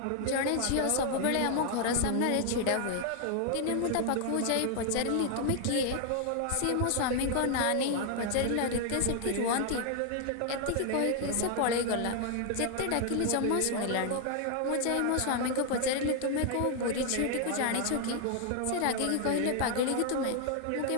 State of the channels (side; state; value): both; different; correlation 0.00